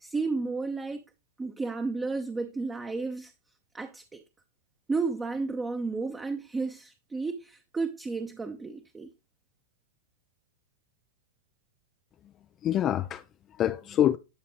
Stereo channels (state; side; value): normal; both; correlation 0.68